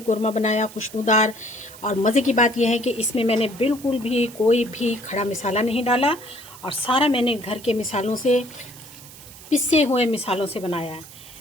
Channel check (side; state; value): right; noise; hiss, 18 dB below the sound